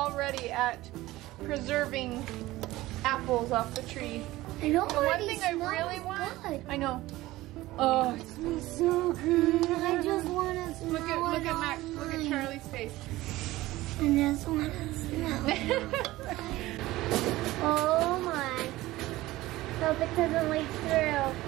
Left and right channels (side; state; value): left; quieter; 17.6 dB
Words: at preserving apples off the tree. I know. The one thing I really want. Good. I know. Oh, It smells so good. I just want to smell it. look at Max. Look at Charlie's face. I just want to smell it. Oh my. Hope it doesn't leak through